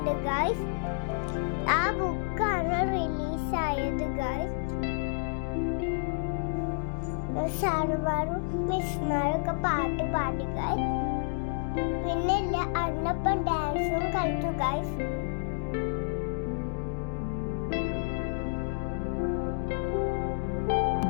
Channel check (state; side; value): silent; right; digital silence